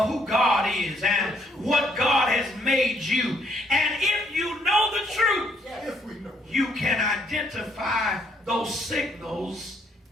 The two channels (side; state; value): both; normal; correlation 0.69